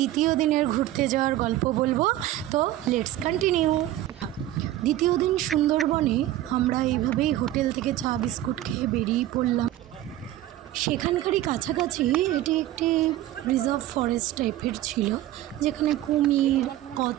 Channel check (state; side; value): quieter; left; 14.2 dB